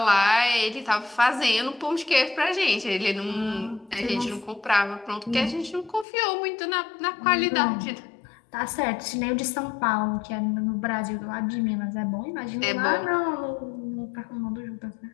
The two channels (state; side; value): drops out; right; at 6.1 s